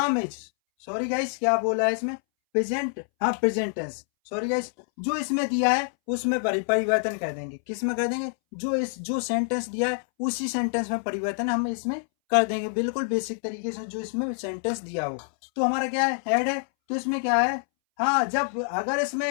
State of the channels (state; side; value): silent; right; 61 dB below the other